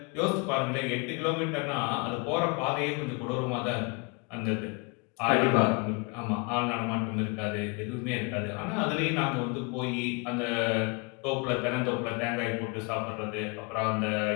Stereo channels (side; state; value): right; quieter; 31.3 dB